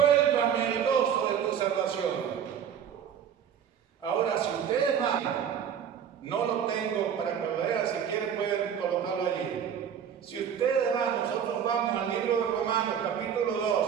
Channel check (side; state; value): left; quieter; 8.4 dB